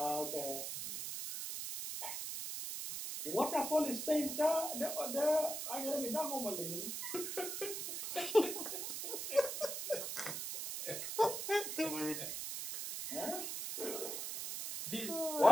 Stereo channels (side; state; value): right; noise; hiss, 4 dB below the sound